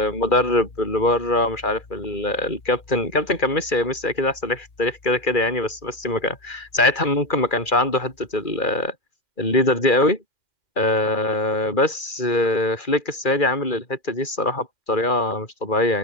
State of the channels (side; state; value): right; late; 2.4 ms